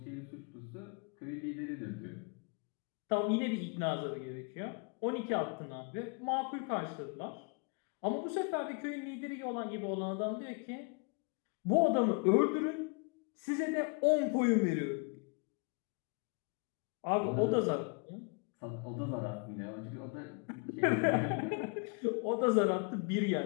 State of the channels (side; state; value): right; quieter; 36.2 dB